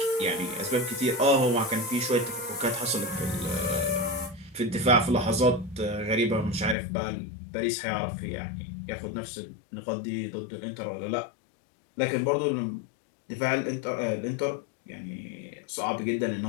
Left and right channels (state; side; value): drops out; right; at 6.8 s